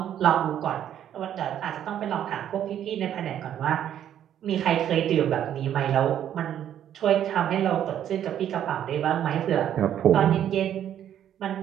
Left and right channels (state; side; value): quieter; left; 10.4 dB